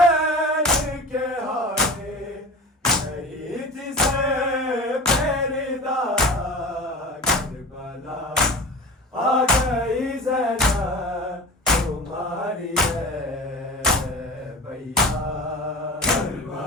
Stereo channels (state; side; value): normal; both; correlation 0.34